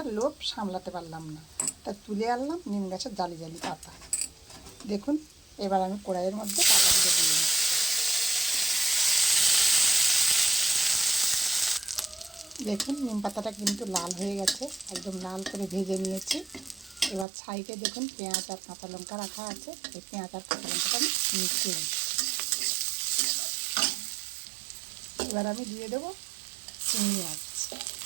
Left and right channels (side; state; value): left; drops out; at 17.2 s